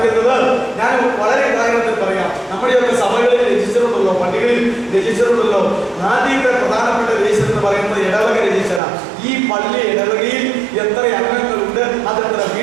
ഞാൻ വളരെ കാര്യത്തിൽ പറയാം. നമ്മുടെയൊക്കെ സഭകളിൽ രജിസ്റ്ററുണ്ടല്ലോ, പള്ളികളിൽ രജിസ്റ്ററുണ്ടല്ലോ. ആദ്യത്തെ പ്രധാനപ്പെട്ട രജിസ്റ്റർ എന്ന് പറയുന്നത് ഇടവക രജിസ്റ്ററാണ്. ഈ പള്ളി ഇടവകയിൽ എത്ര അംഗങ്ങളുണ്ട്, അതെത്ര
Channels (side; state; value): left; drops out; at 8.8 s